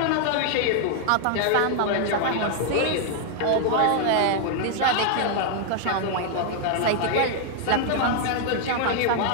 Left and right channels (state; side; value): different; both; correlation 0.00